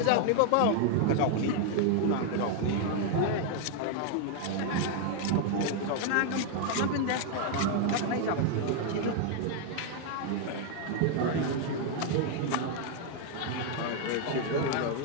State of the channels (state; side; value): different; both; correlation 0.00